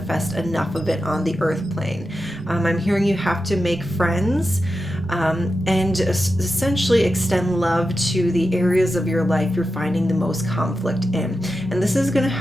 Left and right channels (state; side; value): normal; both; correlation 0.90